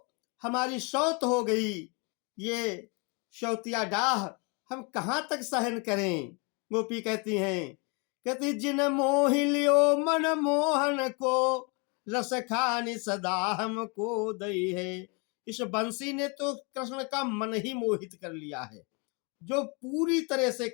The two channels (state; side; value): quieter; right; 32.6 dB